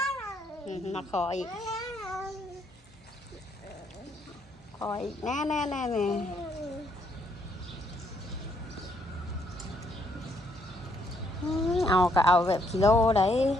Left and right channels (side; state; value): both; normal; correlation 0.71